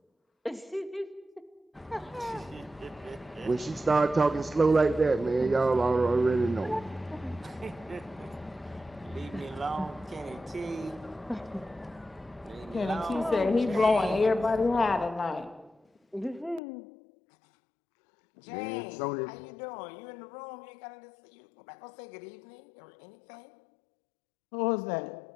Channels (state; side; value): drops out; right; at 16.6 s